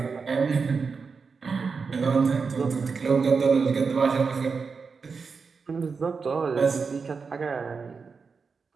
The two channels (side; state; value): left; quieter; 5.1 dB